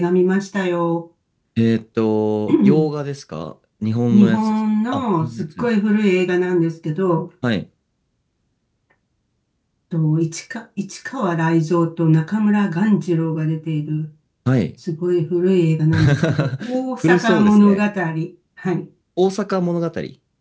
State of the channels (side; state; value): both; identical; correlation 1.00